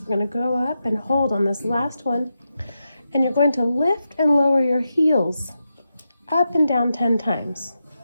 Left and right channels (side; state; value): both; inverted; correlation -0.88